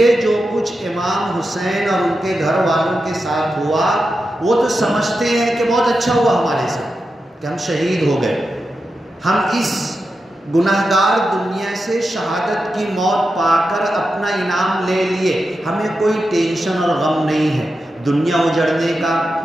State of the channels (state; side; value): normal; both; correlation 0.89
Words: جو کچھ امام حسین اور ان کے گھر والوں کے ساتھ ہوا، وہ تو سمجھتے ہیں کہ بہت اچھا ہوا ہمارے ساتھ کہ ہم شہید ہو گئے، ہم اس گناہگار دنیا سے شہادت کی موت پا کر اپنا انعام لے لیے، ہمیں کوئی ٹینشن اور غم نہیں ہے دنیا اجڑنے کا،